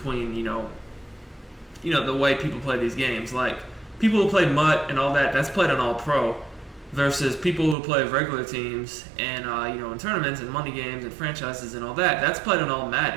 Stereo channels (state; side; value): drops out; left; at 7.8 s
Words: the way people play these games. Like, people who play MUT and all that, that's played on All Pro. Versus people who play regular teams and in tournaments and money games and franchises and all that, that's played on All